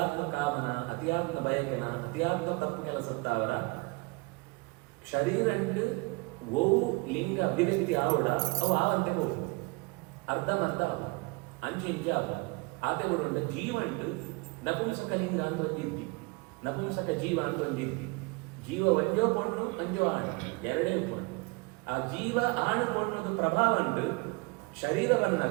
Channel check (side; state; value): left; quieter; 27.4 dB